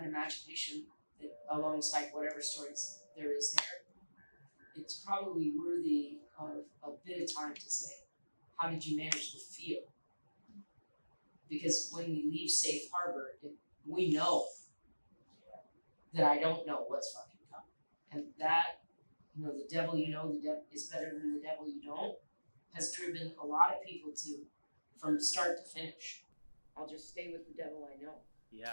imagination that alongside whatever stories there is there, it's probably worthy of a bit of time to say, how did you manage the feel? Because when we leave safe harbor, we know that I don't know what's fucking coming. And that, the devil the devil is better than the devil you don't. has driven a lot of people to, from start to finish, I'll just stay with the devil I know.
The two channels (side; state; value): both; inverted; correlation -1.00